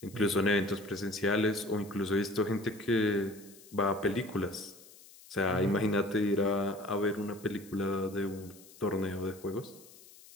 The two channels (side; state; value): left; noise; hiss, 22 dB below the sound